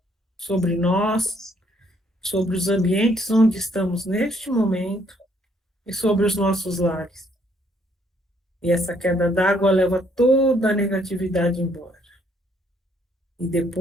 sobre nós, sobre os ambientes onde estamos neste momento e sobre os nossos lares. E essa queda d'água leva toda a negatividade embora. E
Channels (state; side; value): normal; both; correlation 0.67